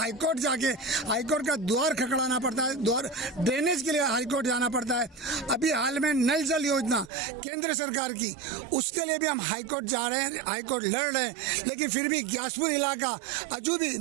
जाके हाईकोर्ट का द्वार खड़काना पड़ता है, द्वार ड्रेनेज के लिए हाईकोर्ट जाना पड़ता है। अभी हाल में नल जल योजना केंद्र सरकार की, उसके लिए भी हम हाईकोर्ट जा रहे हैं, हाईकोर्ट लड़ रहे हैं, लेकिन फिर भी ग्यासपुर इलाका अजू भी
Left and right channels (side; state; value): left; drops out; at 7.1 s